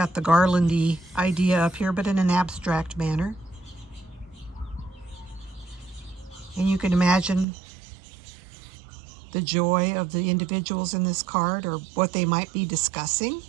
the garlandy idea up here, but in an abstract manner. And you can imagine the joy of the individuals in this card or what they might be discussing.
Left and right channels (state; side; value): drops out; left; at 7.5 s